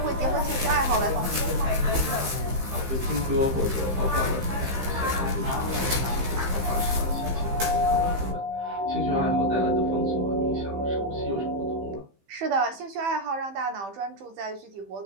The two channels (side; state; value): left; late; 15 ms